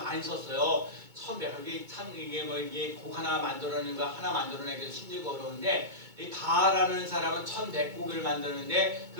썼어요. 1100곡이 참 이게 곡 하나 만들어내는 거 하나 만들어내기도 힘들고 어려운데 이 바라는 사람은 1100곡을 만드는데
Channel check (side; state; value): left; late; 2.2 ms